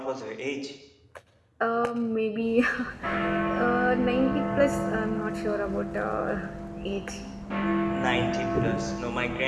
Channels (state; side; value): identical; both; correlation 1.00